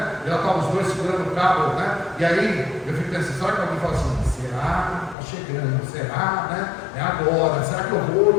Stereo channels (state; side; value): drops out; right; at 5.2 s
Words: Já estavam os dois segurando o cabo, né? E aí eu fico pensando, será que alguém fala assim, será? Está chegando, será, né? É agora, será que eu vou,